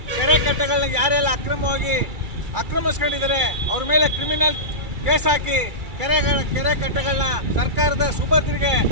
ಕೆರೆ ಕಟ್ಟೆಗಳನ್ನ ಯಾರೆಲ್ಲ ಅಕ್ರಮವಾಗಿ ಆಕ್ರಮಿಸ್ಕೊಂಡಿದ್ದಾರೆ ಅವ್ರ ಮೇಲೆ ಕ್ರಿಮಿನಲ್ ಕೇಸ್ ಹಾಕಿ ಕೆರೆ ಕಟ್ಟೆಗಳನ್ನ ಸರ್ಕಾರದ ಸುಭದ್ರಿಗೆ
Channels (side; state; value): left; late; 2.3 ms